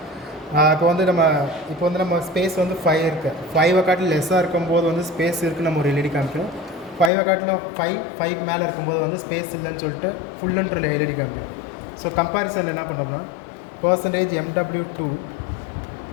இப்போ வந்து நம்ம ஸ்பேஸ் வந்து 5 இருக்குது. 5 காட்டில் லெஸ்ஸாக இருக்கும்போது வந்து ஸ்பேஸ் இருக்குது, நம்ம ஒரு எல்இடி காமிக்கும். 5 காட்டிலும் 5 மேலே இருக்கும்போது வந்து ஸ்பேஸ் இல்லைன்னு சொல்லிட்டு ஃபுல்லுன்ற எல்இடி காமிக்கும். ஸோ கம்பேரிசனில் என்ன பண்ணோம்னா, %MW2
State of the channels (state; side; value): drops out; right; at 7.1 s